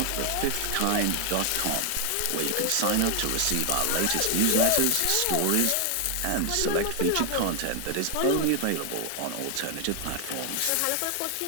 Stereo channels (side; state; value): both; different; correlation 0.00